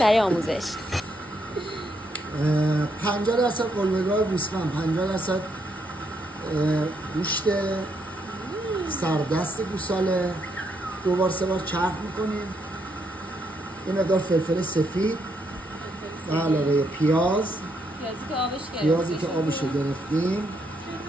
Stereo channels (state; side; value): normal; both; correlation 0.76